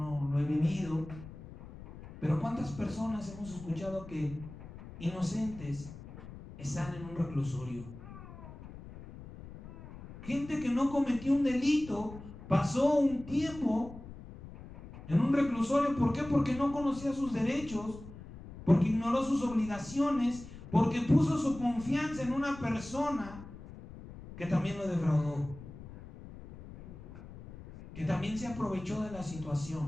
lo he vivido, pero ¿cuántas personas hemos escuchado que inocentes están en un reclusorio? Gente que no cometió un delito, pasó un tiempo en un reclusorio. ¿Por qué? Porque no conocía sus derechos, porque ignoró sus obligaciones, porque puso su confianza en una persona que también lo defraudó, que también se aprovechó de la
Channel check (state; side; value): noise; left; rumble, 15 dB below the sound